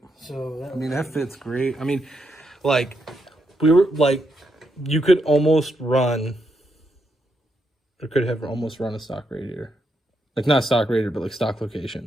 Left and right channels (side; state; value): both; normal; correlation 0.80